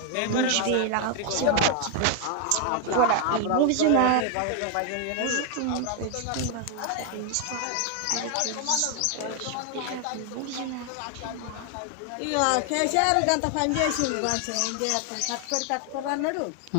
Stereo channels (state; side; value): different; both; correlation 0.00